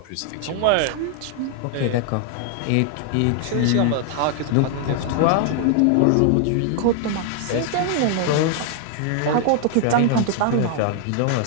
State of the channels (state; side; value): different; both; correlation 0.00